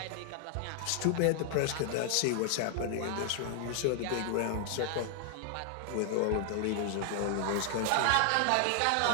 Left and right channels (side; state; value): both; different; correlation 0.00